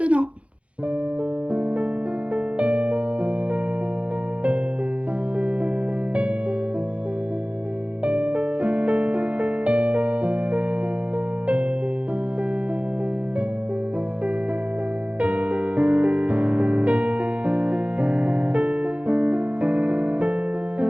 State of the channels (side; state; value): left; late; 0.062 ms